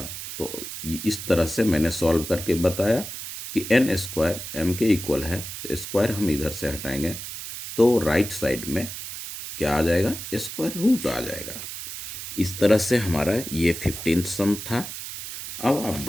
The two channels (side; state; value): right; noise; hiss, 9 dB below the sound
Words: तो इस तरह से मैंने सॉल्व करके बताया कि n स्क्वायर m के इक्वल है, तो स्क्वायर हम इधर से हटाएंगे तो राइट साइड में क्या आ जाएगा? स्क्वायर रूट आ जाएगा। इस तरह से हमारा ये 15th सम था। अब आप